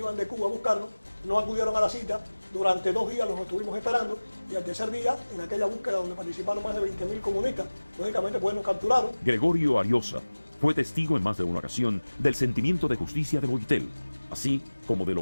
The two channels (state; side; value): inverted; both; correlation -1.00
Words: de Cuba a buscarnos, no acudieron a la cita, durante 2 días los estuvimos esperando y al tercer día, en aquella búsqueda donde participaron más de 20.000 comunistas, lógicamente pues nos capturaron. Gregorio Ariosa fue testigo en más de una ocasión del sentimiento de justicia de Boitel, así como de